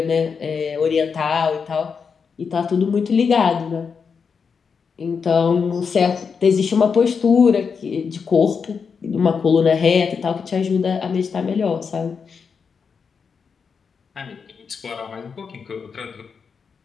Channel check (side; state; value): right; quieter; 5.9 dB